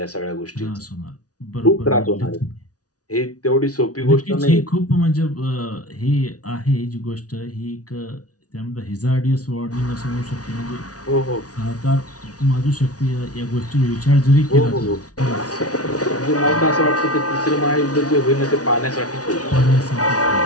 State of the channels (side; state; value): right; late; 0.68 ms